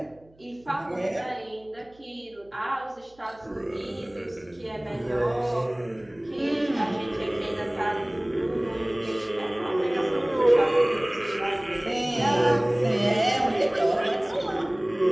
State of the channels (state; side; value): noise; right; hum, 29 dB below the sound